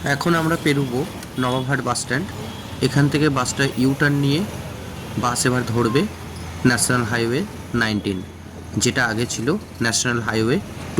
এখন আমরা পেরোবো নবাবহাট বাস স্ট্যান্ড। এখান থেকে বাসটা ইউটার্ন নিয়ে বাস এবার ধরবে ন্যাশনাল হাইওয়ে 19, যেটা আগে ছিল ন্যাশনাল হাইওয়ে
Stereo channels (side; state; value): both; identical; correlation 1.00